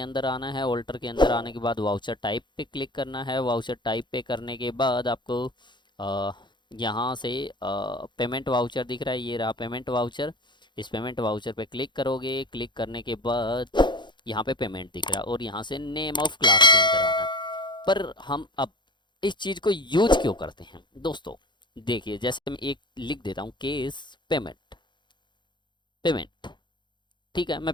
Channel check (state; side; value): late; right; 0.22 ms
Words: आना है। ऑल्टर के अंदर आने के बाद वाउचर टाइप पे क्लिक करना है। वाउचर टाइप पे करने के बाद आपको अ, यहाँ से पेमेंट वाउचर दिख रहा है, ये रहा पेमेंट वाउचर। इस पेमेंट वाउचर पे क्लिक करोगे। क्लिक करने के बाद यहाँ पे पेमेंट दिख रहा है और यहाँ से नेम ऑफ क्लास के अंदर आना है। पर हम अब इस चीज़ को यूज क्यों करते हैं दोस्तों, देखिए जैसे मैं एक लिख देता हूँ, केस पेमेंट पेमेंट। ठीक है, मैं